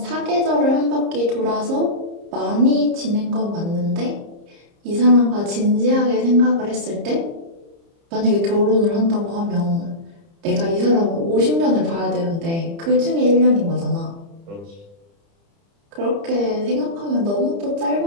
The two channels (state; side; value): late; left; 30 ms